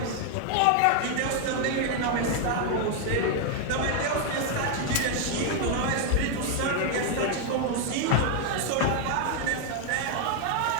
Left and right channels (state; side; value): different; both; correlation 0.00